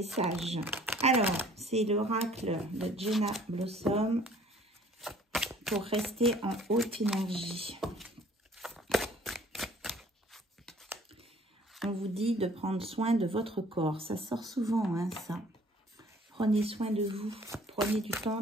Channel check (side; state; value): both; normal; correlation 0.55